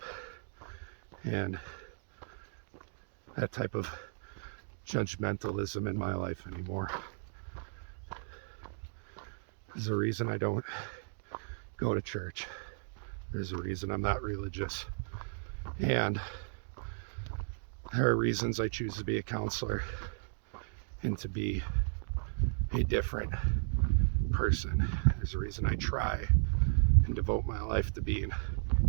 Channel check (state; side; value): silent; left; digital silence